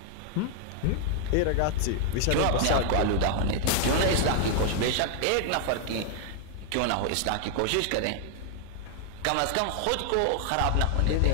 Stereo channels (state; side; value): different; both; correlation 0.00